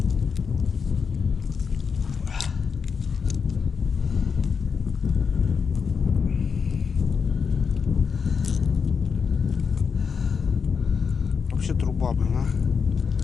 Вообще труба, блин, а.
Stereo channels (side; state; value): right; quieter; 5.9 dB